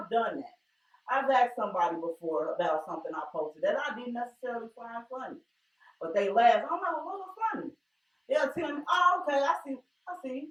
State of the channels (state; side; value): identical; both; correlation 1.00